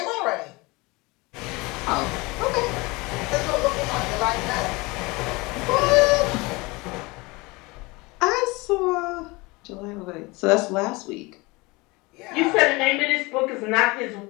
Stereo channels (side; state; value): right; quieter; 24.3 dB